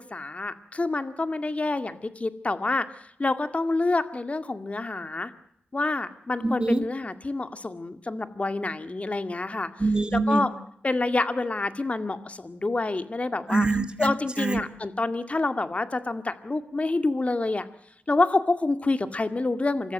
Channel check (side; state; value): both; normal; correlation 0.92